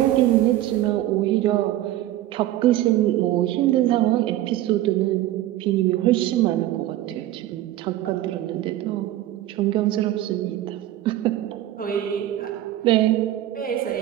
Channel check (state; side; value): quieter; left; 14.1 dB